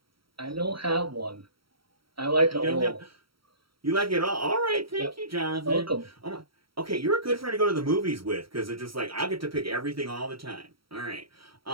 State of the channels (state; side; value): late; left; 0.75 ms